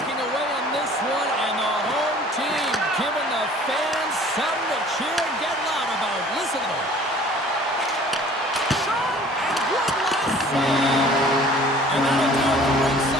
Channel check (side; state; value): both; normal; correlation 0.50